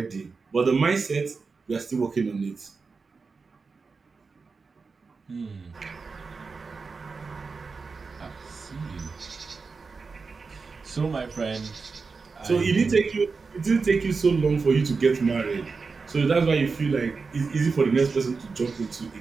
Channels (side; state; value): left; quieter; 4.6 dB